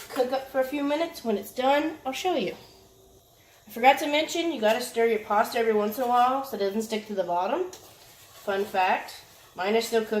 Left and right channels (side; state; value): both; identical; correlation 1.00